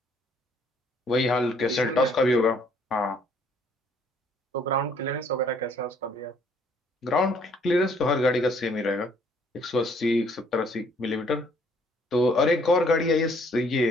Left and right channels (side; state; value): both; normal; correlation 0.63